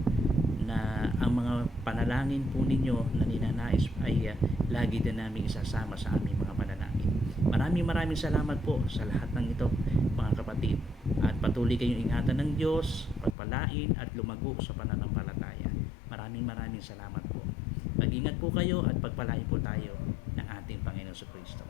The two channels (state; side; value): drops out; right; at 13.4 s